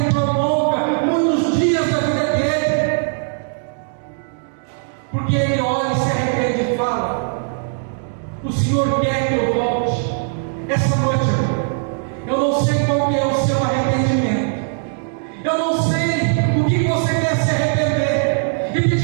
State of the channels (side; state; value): left; silent; digital silence